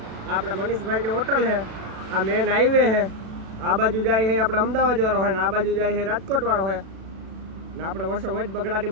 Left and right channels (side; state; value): left; late; 37 ms